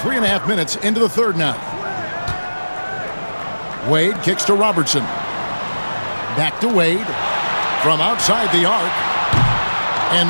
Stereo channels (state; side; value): inverted; both; correlation -1.00